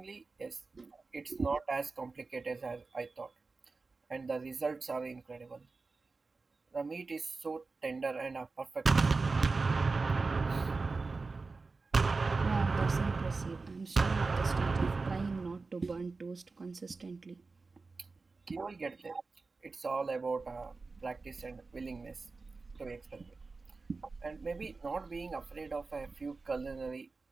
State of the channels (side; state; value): left; quieter; 4.0 dB